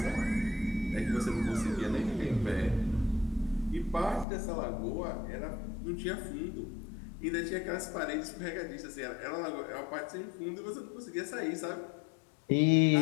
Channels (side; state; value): right; drops out; at 4.2 s